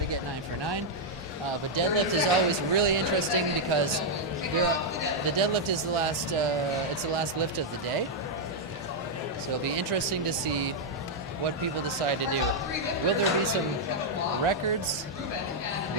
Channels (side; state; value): both; normal; correlation -0.03